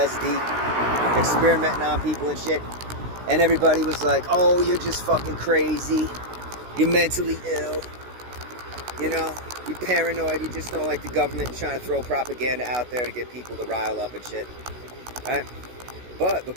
experimenting on people and shit. And everybody was like, oh, you're just fucking crazy, you're mentally ill, you know, you're paranoid, you just don't like the government trying to throw propaganda out there to get people to rile up and shit, right? But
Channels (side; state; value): left; late; 16 ms